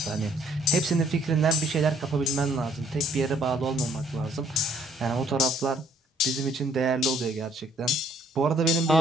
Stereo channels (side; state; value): both; normal; correlation 0.63